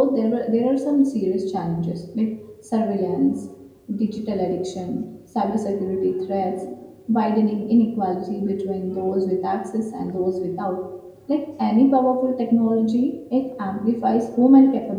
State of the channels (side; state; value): both; identical; correlation 1.00